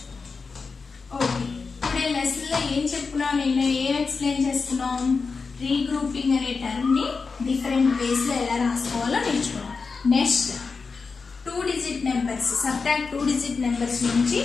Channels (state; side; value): quieter; right; 4.7 dB